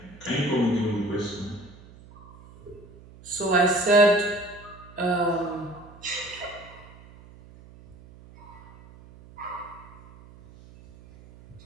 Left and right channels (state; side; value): noise; right; hum, 21 dB below the sound